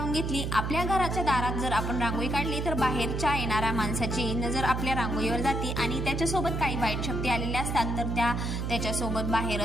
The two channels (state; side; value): noise; right; hum, 2 dB below the sound